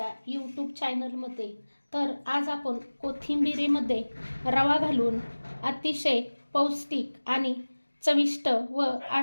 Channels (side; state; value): both; inverted; correlation -1.00